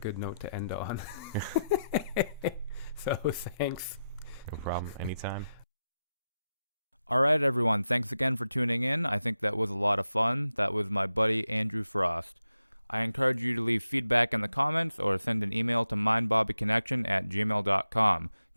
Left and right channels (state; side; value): inverted; both; correlation -0.89